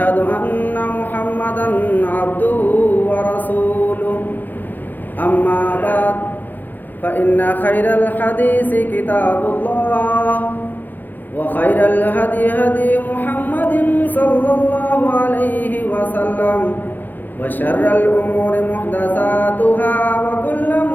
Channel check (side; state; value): right; late; 0.087 ms